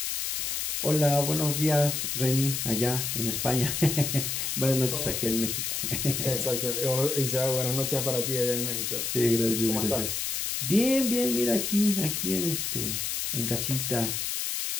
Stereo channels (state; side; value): noise; left; hiss, 1 dB below the sound